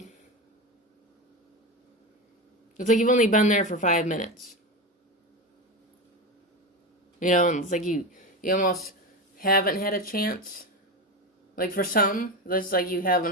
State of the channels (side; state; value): both; normal; correlation 0.20